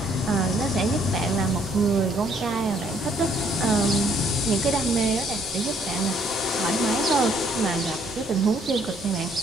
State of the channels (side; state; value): both; normal; correlation 0.65